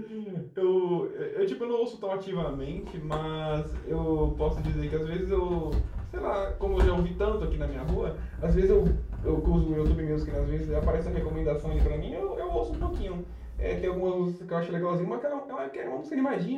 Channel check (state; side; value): identical; both; correlation 1.00